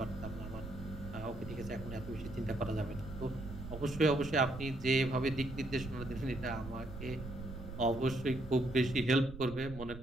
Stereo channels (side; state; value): right; noise; rumble, 11 dB below the sound